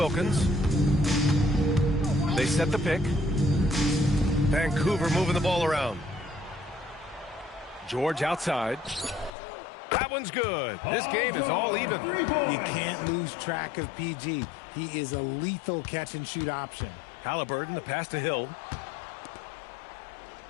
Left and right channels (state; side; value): drops out; right; at 9.3 s